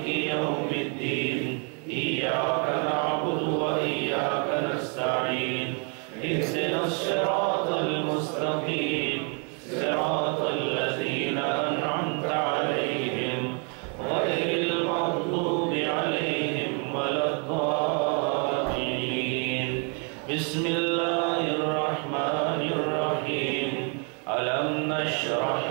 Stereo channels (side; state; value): left; quieter; 38.1 dB